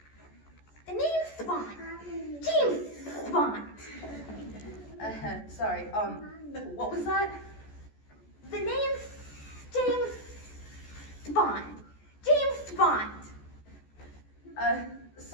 The name's Bond. James Bond. Sorry, what was that? The name's James Bond. James Bond.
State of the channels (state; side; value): late; right; 14 ms